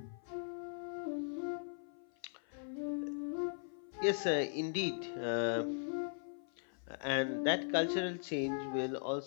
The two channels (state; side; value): silent; right; 52 dB below the other